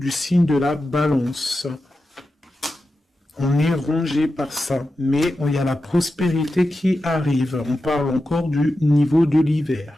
signe de la balance. On est rongé par ça, mais il y a la prospérité qui arrive. On parle encore du niveau de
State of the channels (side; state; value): both; normal; correlation 0.91